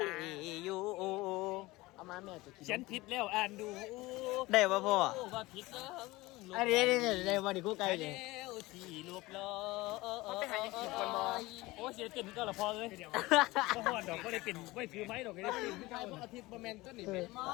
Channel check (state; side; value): quieter; right; 20.5 dB